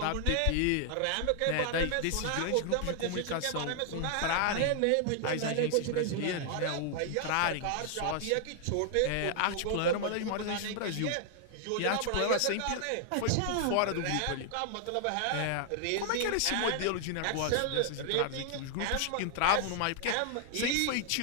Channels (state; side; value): different; both; correlation 0.00